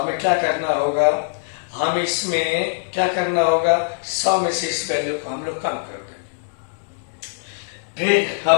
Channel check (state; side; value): silent; right; digital silence